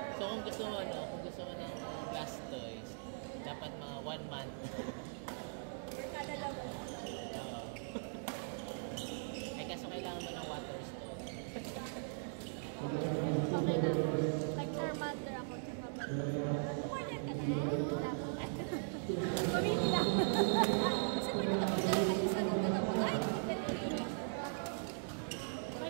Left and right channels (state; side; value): silent; left; digital silence